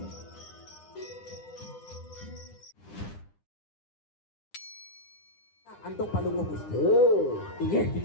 Antung palungo Gusti. Iya,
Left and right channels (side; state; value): right; late; 9.9 ms